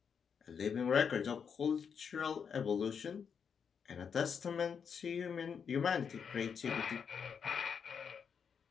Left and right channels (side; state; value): right; quieter; 6.8 dB